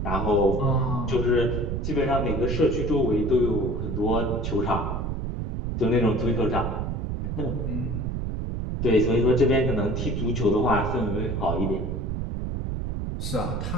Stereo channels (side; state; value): right; noise; rumble, 2 dB below the sound